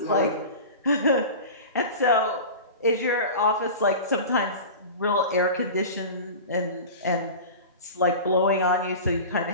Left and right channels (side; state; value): both; inverted; correlation -0.33